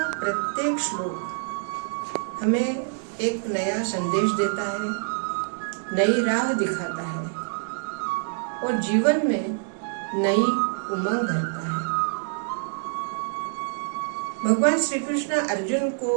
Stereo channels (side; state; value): left; silent; 61 dB below the other